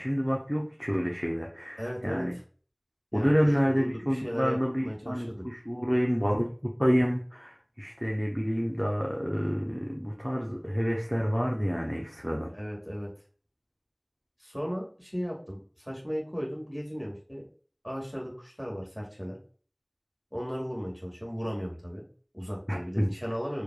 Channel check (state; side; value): identical; both; correlation 1.00